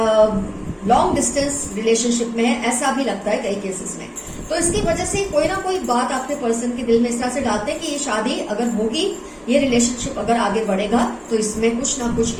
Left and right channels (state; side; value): identical; both; correlation 1.00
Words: लॉन्ग डिस्टेंस रिलेशनशिप में है, ऐसा भी लगता है कई केसेस में। तो इसकी वजह से कोई ना कोई बात आपके पर्सन के दिल में इस तरह से डालते हैं कि ये शादी अगर होगी, ये रिलेशनशिप अगर आगे बढ़ेगा तो इसमें कुछ ना कुछ